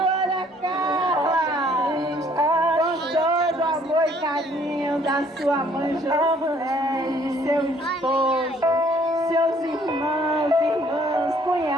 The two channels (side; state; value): both; normal; correlation 0.61